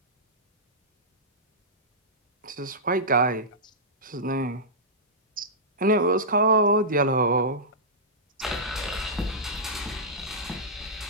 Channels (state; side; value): normal; both; correlation -0.14